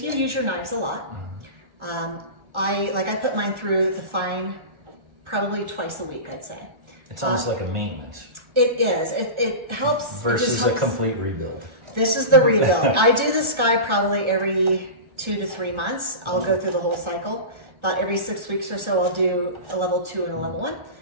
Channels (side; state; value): left; late; 1.3 ms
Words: you use your knives a lot, I put mine through the fine probably twice a week, I'd say. It's almost like a maintenance. It is. It helps. Versus a complete rebuild. This is the rebuild. I do this guy probably every 2 to 3 months. I'll go through the whole cycle. About every 6 weeks or so, I'll do a level 2 and a level 1.